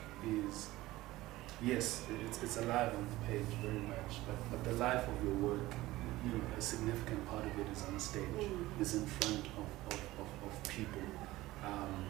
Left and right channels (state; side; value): quieter; left; 17.7 dB